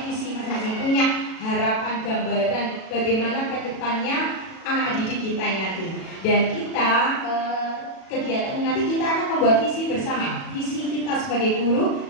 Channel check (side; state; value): right; late; 37 ms